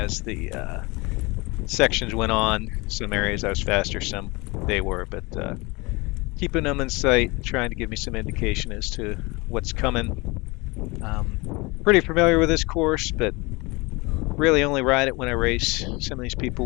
the sections went on. Some areas I was faster, some they were, but keeping them in sight, trying to give me some indication as to what's coming. Pretty familiar with this course, but really only ride it when I race. Some of these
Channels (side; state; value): right; quieter; 25.1 dB